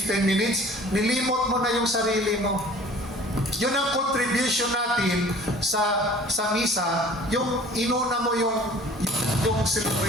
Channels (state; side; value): normal; both; correlation 0.48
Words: minutes, nilimot mo na yung sarili mo. Yun ang contribution natin sa misa, yung inuna mo yung